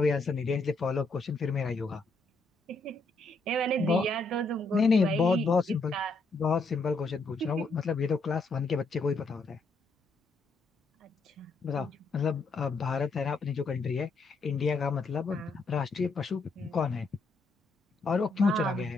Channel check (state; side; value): quieter; right; 3.4 dB